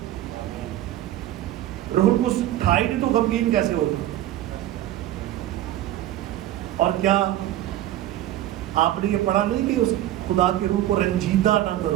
روح القدس تھا ہی نہیں تو غمگین کیسے ہوگا؟ اور کیا آپ نے یہ پڑھا نہیں کہ اس خدا کے روح کو رنجیدہ نہ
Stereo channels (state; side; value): quieter; left; 13.5 dB